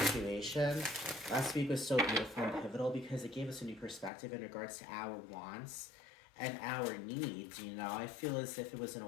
Last week was so beautiful and pivotal because it gave us a new perspective in regards to our wants and our needs. You know, I feel as if it was an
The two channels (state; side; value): drops out; right; at 4.1 s